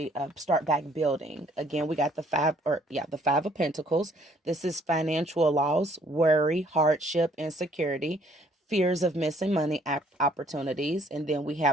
start back building. Again, we got the Five of Pentacles. This is financial loss, worry, hardship, insecurity, fears of missing money opportunities. And then we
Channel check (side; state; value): both; normal; correlation 0.62